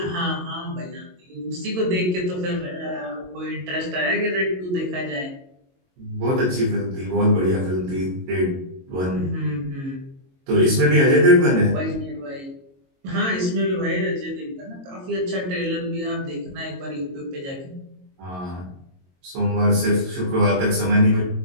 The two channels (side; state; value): left; late; 22 ms